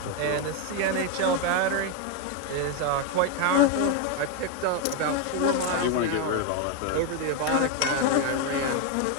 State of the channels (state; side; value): different; both; correlation 0.02